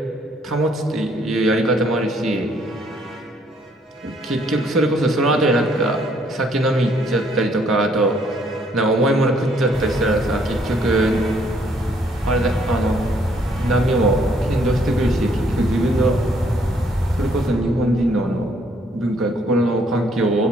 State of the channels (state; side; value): normal; both; correlation 0.67